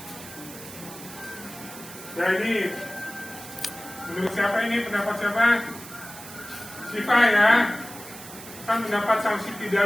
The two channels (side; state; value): right; noise; hiss, 14 dB below the sound